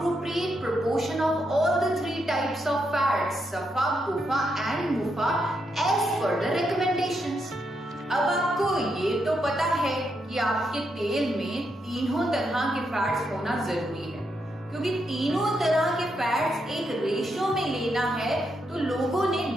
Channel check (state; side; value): normal; both; correlation 0.81